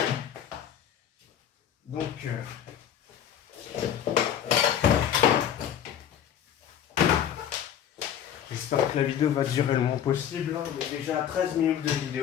Donc, j'espère que la vidéo va durer le moins possible. Hein. On est déjà à 13 minutes de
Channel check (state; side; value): quieter; right; 9.6 dB